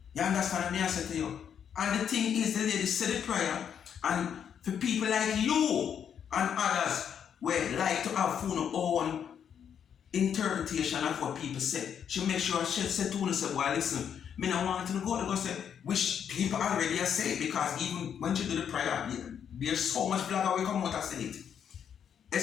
You understand what I say to you? And the thing is, the lady said the prayer, and for people like you and others who like to have their own interpretation of what people say, she make sure she said to us, say, well, listen, me not want to go to go say, which people already are saying, because even when she do the prayer, there's so much blogger will come out and say it.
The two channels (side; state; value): right; quieter; 8.2 dB